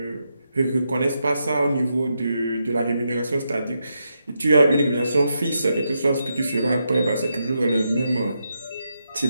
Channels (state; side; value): inverted; both; correlation -0.84